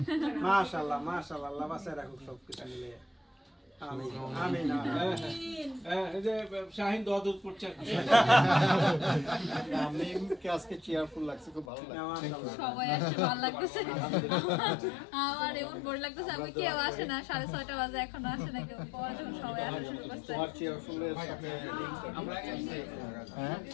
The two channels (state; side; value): drops out; right; at 11.7 s